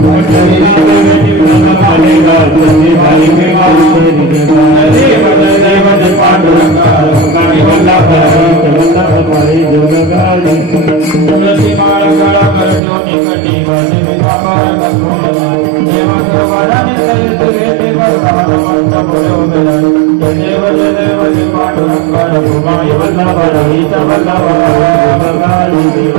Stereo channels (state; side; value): drops out; left; at 12.8 s